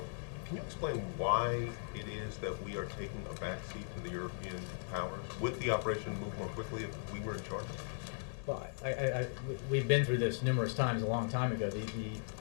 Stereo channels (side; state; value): right; silent; digital silence